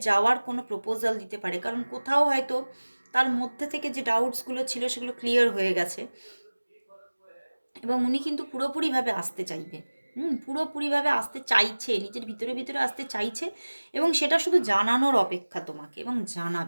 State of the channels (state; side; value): inverted; both; correlation -1.00